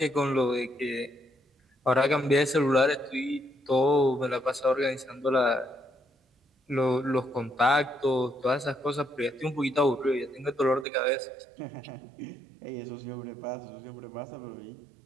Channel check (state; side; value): drops out; left; at 10.9 s